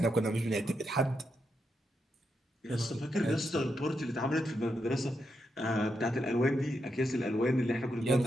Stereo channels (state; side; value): normal; both; correlation 0.83